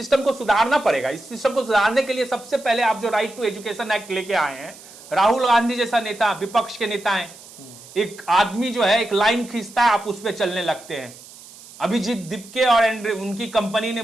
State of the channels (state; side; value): noise; right; hiss, 19 dB below the sound